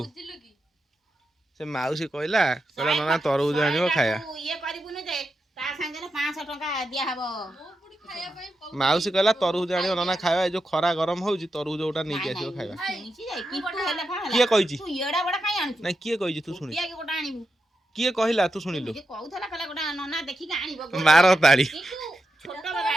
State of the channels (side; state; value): both; normal; correlation 0.88